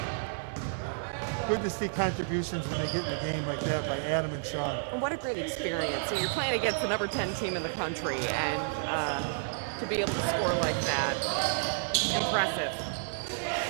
good to see contributions when they get in the game like that by Adam and Sean. And what a great experience. So you're playing against the number 10 team in the country, and to be able to score like that, impressive.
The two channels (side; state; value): left; silent; digital silence